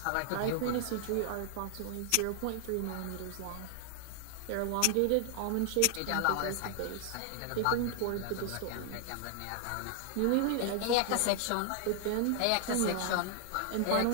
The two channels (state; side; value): different; both; correlation 0.00